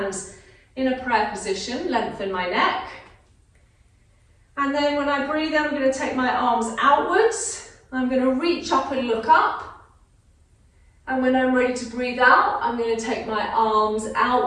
in a prayer position, lengthen my neck. And then when I breathe in, I'm going to take my arms outwards. I'm going to reach up and look up. And when I'm ready to breathe out, I'm going to take my arms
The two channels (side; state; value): both; identical; correlation 1.00